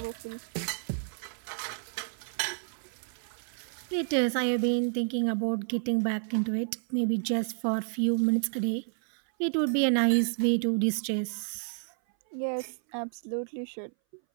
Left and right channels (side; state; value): left; silent; 58 dB below the other